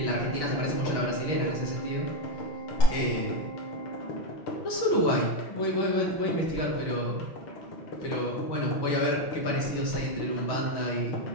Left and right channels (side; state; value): right; late; 6.2 ms